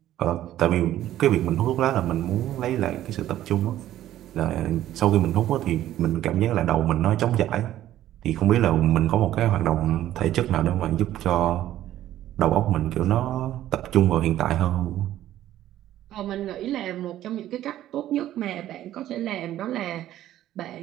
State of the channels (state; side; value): quieter; left; 13.0 dB